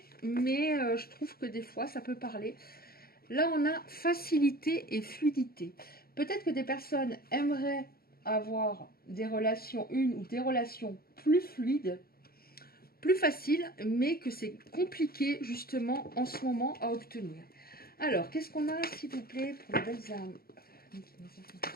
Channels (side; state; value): right; late; 0.44 ms